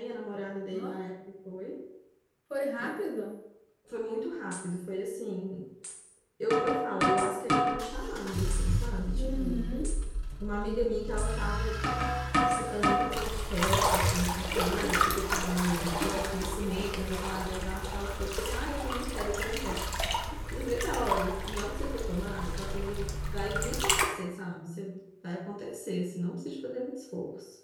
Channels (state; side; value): identical; both; correlation 1.00